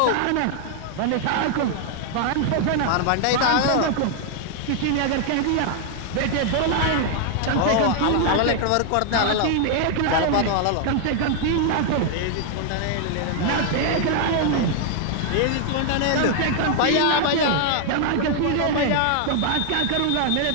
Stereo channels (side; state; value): both; different; correlation 0.00